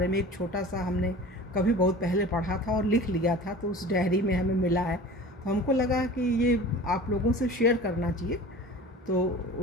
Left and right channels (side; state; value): both; normal; correlation 0.39